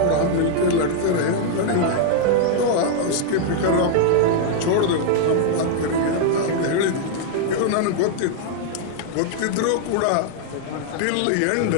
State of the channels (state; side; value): different; both; correlation -0.01